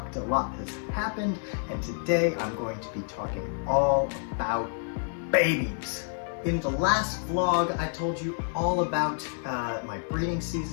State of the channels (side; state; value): right; silent; digital silence